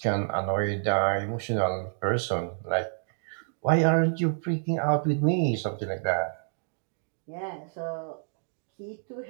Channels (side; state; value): left; silent; digital silence